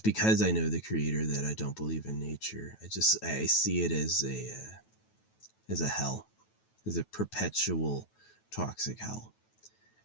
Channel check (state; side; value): late; right; 9.2 ms